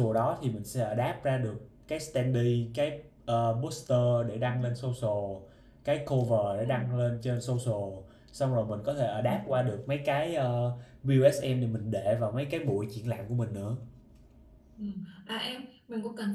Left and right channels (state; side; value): identical; both; correlation 1.00